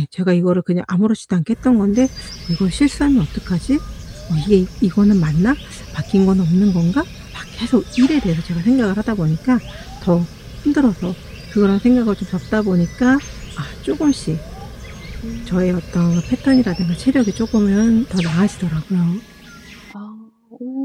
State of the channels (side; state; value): both; identical; correlation 1.00